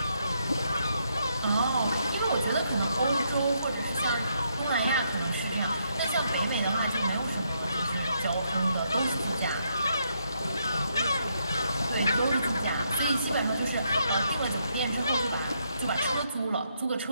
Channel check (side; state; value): both; inverted; correlation -0.77